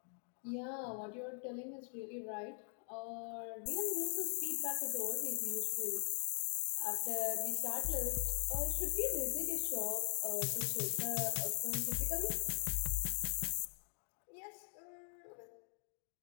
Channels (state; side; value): silent; right; 50 dB below the other